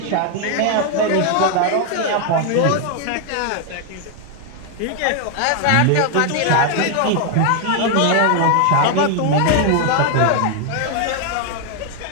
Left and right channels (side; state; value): both; different; correlation 0.00